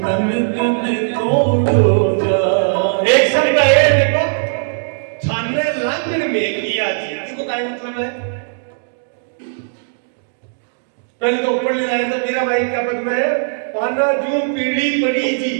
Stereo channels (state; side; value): silent; left; digital silence